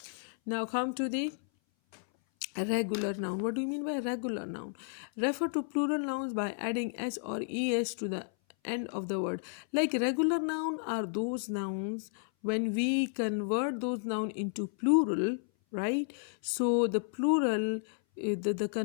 Now come to the regular noun. What do you mean by regular noun? Refer to plural nouns by adding s or es to the end of the word. Like regular noun are those nouns when we convert those noun into plural, right? So the plural, the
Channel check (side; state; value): right; silent; 56 dB below the other